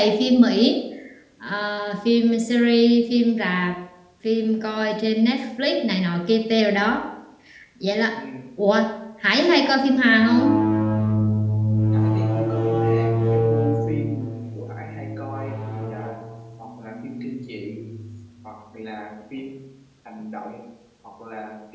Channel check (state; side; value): identical; both; correlation 1.00